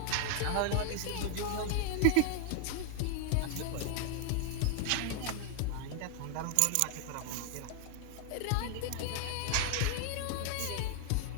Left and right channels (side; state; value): both; different; correlation 0.00